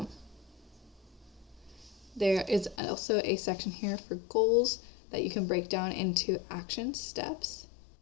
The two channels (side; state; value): right; drops out; at 2.8 s